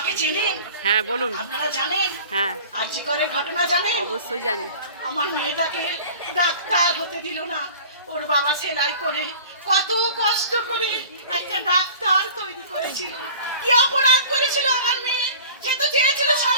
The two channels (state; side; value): inverted; both; correlation -0.43